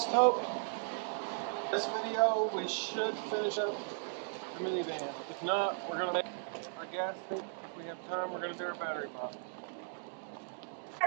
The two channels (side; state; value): left; silent; digital silence